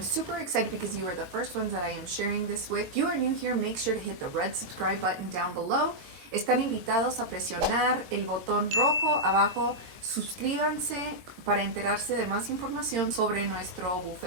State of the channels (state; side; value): late; left; 22 ms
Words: excited because you are the first ones that I am sharing this with. If you are new here, make sure to hit the red subscribe button down below. Están invitados a presionar el botón rojo abajo. Suscríbanse para enterarse de más información sobre nuestro